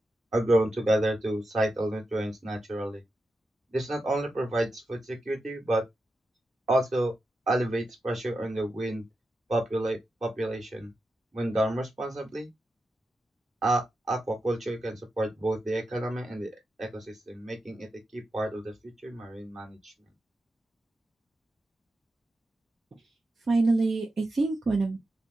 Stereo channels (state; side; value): normal; both; correlation 0.89